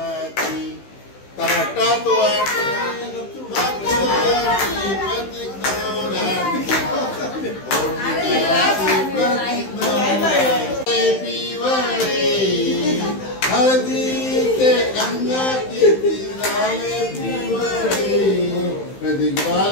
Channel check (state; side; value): late; right; 15 ms